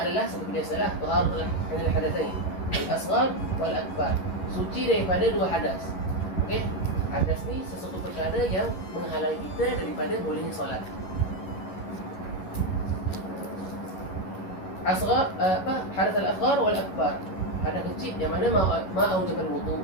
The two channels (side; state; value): right; late; 11 ms